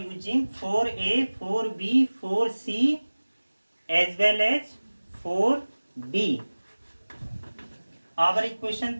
4a, 4b, 4c as well as 4d, our equation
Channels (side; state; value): both; inverted; correlation -1.00